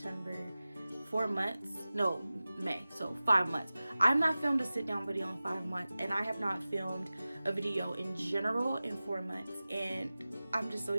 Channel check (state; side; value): inverted; both; correlation -0.97